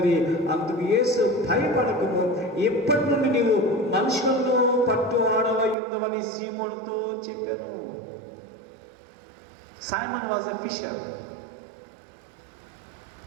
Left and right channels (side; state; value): left; drops out; at 5.8 s